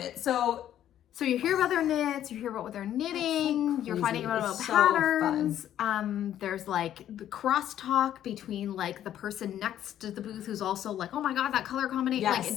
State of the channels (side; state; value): right; quieter; 11.2 dB